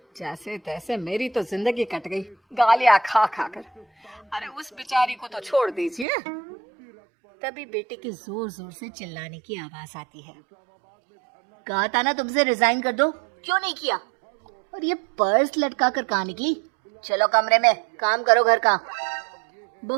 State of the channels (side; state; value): left; drops out; at 6.1 s